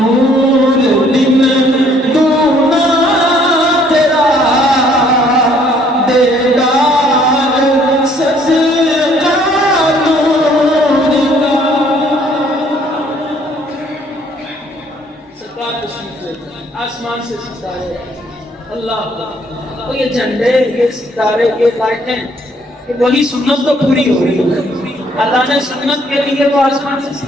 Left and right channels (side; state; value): both; normal; correlation 0.63